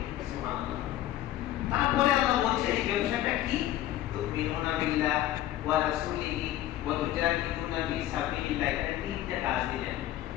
সুবহানাল্লাহ। তারপরে আল্লাহ বলছে এই ব্যবসাটা কি, তুমিনুনা বিল্লাহ ওয়া রাসূলিহি ওয়া তুজাহিদুনা ফি সাবিলিল্লাহ, এখানে তিনটা কাজ দিলেন।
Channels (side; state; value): right; quieter; 13.7 dB